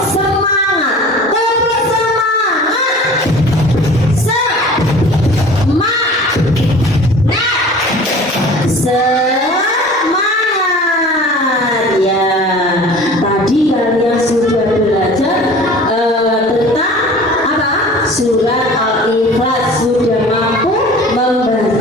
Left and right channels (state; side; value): normal; both; correlation 0.43